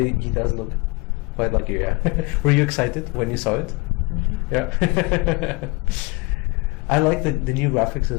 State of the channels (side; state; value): right; quieter; 25.7 dB